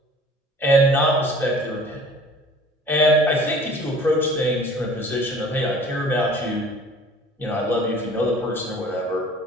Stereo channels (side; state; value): both; normal; correlation 0.48